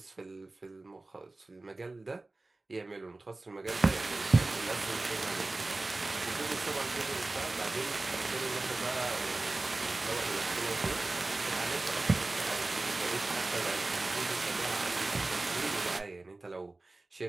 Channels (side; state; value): left; quieter; 3.1 dB